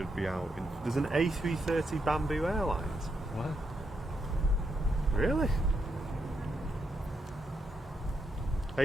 be out. There's an A330 Bamboo Airlines. What? Really?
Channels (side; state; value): both; normal; correlation 0.81